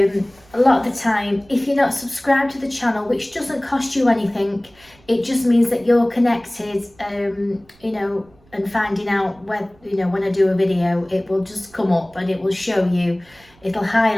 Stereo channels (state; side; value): noise; right; rumble, 29 dB below the sound